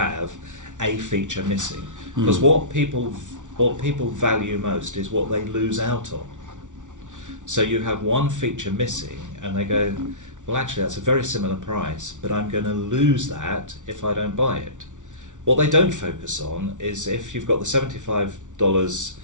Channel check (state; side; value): late; left; 0.86 ms